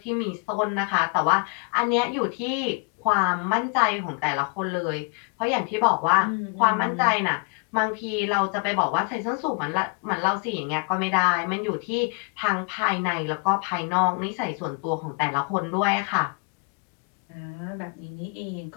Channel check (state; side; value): quieter; right; 36.4 dB